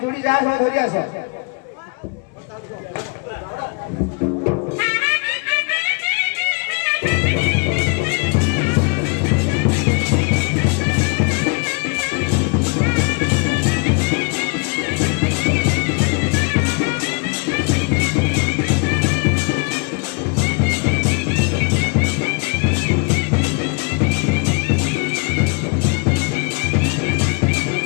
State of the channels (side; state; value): right; quieter; 33.8 dB